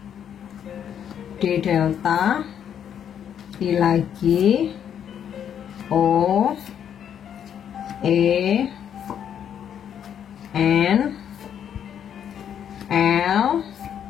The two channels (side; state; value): right; quieter; 8.9 dB